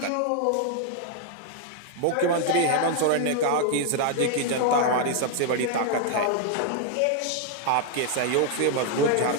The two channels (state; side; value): different; both; correlation 0.00